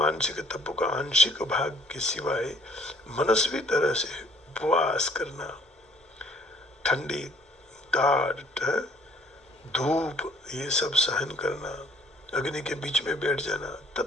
तपों का आंशिक भाग के सिवाय मनस्वी तरह से उपवास करना, ठंडी टाट, धूप, ये सब सहन करना, अग्नि के बीच में बैठ जाना,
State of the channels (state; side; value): normal; both; correlation 0.60